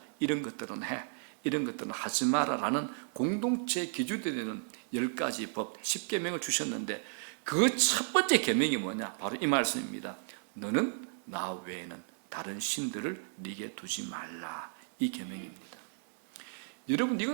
이런 것들은 해, 이런 것들은 하지 마라라는 공동체의 기준이 되는 10가지 법, 10계명을 주셨는데 그 첫 번째 계명이 뭐냐? 바로 이 말씀입니다. 너는 나 외에는 다른 신들을 네게 두지 말라. 이 계명입니다. 여러분,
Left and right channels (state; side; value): silent; left; 55 dB below the other